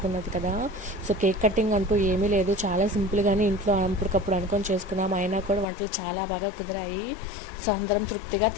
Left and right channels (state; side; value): drops out; right; at 5.7 s